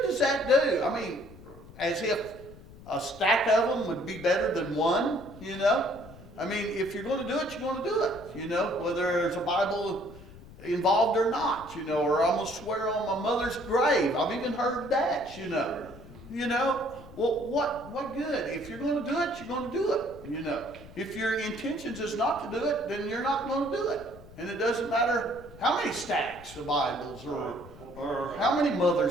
does that do? I mean, as if a stack of them would be better than one, you know. I mean, if you're going to do it, you're going to do it, you know, whether there's a Bible involved or not, you know, or I'm going to swear on my mother's grave. I've even heard that, you know. You know, well, what good? If you're going to do it, you're going to do it, you know. If your intentions is not to do it, then you're not going to do it. And it doesn't matter how many stacks of Bibles or how many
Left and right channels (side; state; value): left; noise; rumble, 18 dB below the sound